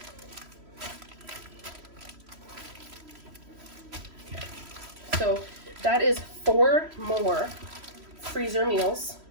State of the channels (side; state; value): left; late; 3.1 ms